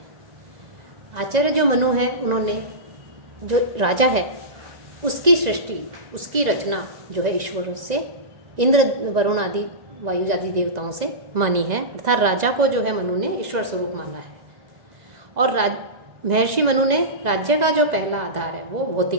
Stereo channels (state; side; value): late; left; 2.0 ms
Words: आचार्य जो मनु है, उन्होंने जो राजा है उसकी सृष्टि, उसकी रचना जो है ईश्वर से, इंद्र, वरुण आदि, वायु आदि देवताओं से मानी है। अर्थात राजा को जो है मनु ने ईश्वर स्वरूप माना है। और महर्षि मनु ने राज्य का जो पहला आधार है वो